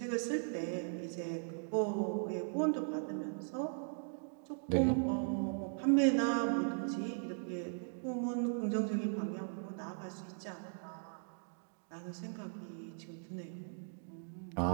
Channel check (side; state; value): left; silent; digital silence